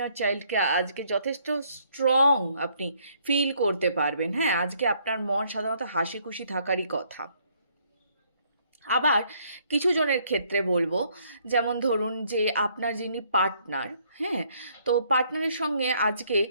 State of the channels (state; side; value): inverted; both; correlation -0.67